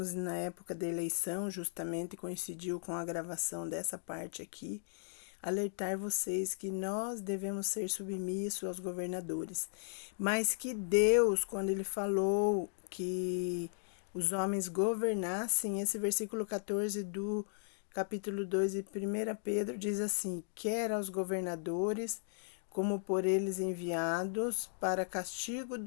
na época da eleição, justamente coincidiu com a gravação dessa parte aqui, alertar vocês que nós devemos ser submissos aos governadores, mas que Deus, quando Ele falou que os homens governassem, esse versículo 14 do capítulo 2 de 1 Pedro diz assim: quer aos governadores, como por eles enviados, para castigo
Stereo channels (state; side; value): silent; right; digital silence